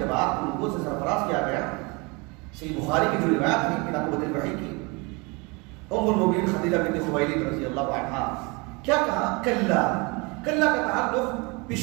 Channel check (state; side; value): quieter; left; 28.2 dB